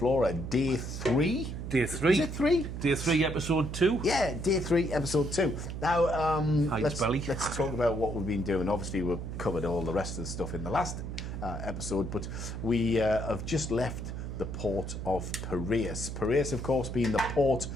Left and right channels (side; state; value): right; noise; hum, 6 dB below the sound